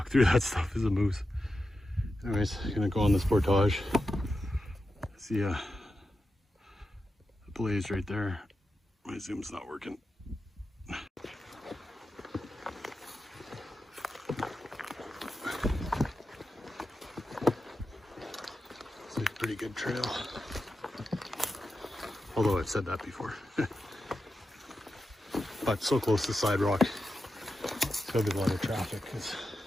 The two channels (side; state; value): both; normal; correlation 0.90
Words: through that stuff is a moose. Anyways, I'm gonna go on this portage. See a blaze right there. My zoom's not working. It's a pretty good trail. Although I've said that before. But so close to Siderock, it's gotta be a lot of traffic because